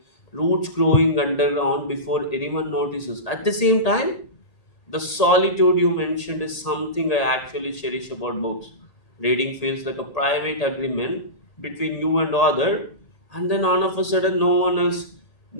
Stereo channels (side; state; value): right; late; 1.8 ms